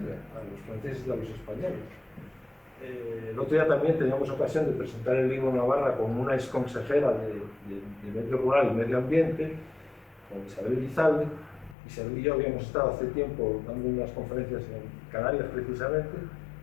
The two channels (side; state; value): right; drops out; at 11.8 s